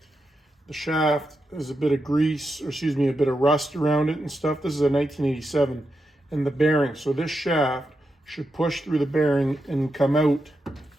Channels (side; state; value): both; normal; correlation 0.86